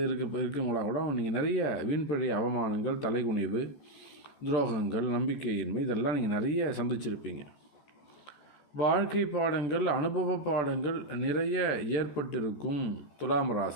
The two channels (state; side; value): late; right; 14 ms